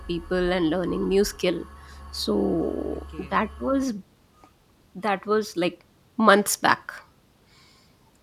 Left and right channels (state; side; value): identical; both; correlation 1.00